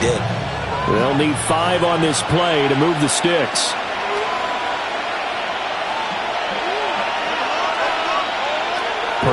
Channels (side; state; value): both; identical; correlation 1.00